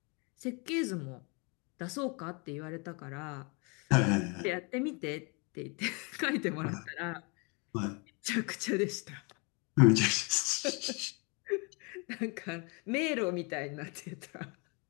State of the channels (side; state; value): right; quieter; 31.9 dB